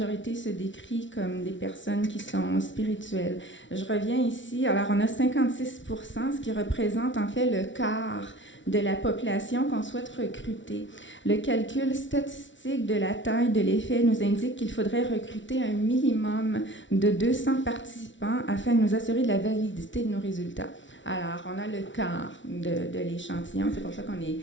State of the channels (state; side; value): late; right; 0.55 ms